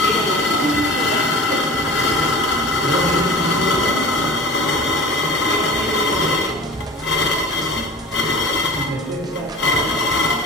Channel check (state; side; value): normal; both; correlation 0.37